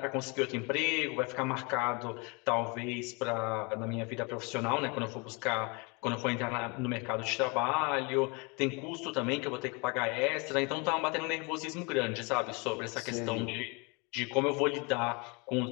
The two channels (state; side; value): quieter; right; 30.4 dB